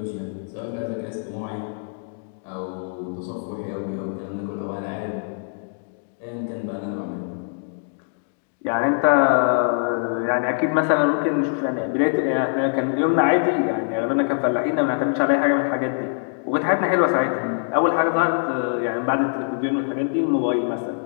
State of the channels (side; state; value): right; silent; digital silence